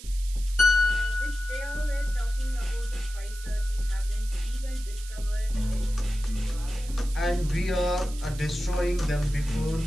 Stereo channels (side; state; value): right; noise; hiss, 16 dB below the sound